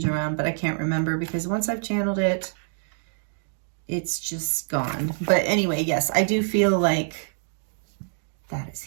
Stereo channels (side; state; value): left; silent; 61 dB below the other